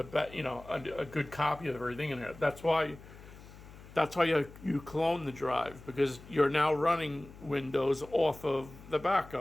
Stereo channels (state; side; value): noise; left; hum, 18 dB below the sound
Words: good copy of everything in there. That's why you clone the drive, because you're now running Windows off of the